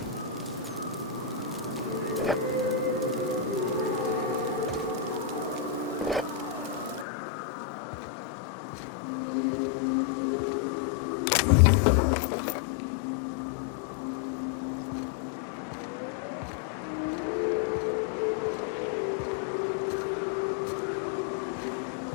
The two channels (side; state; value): right; drops out; at 7.1 s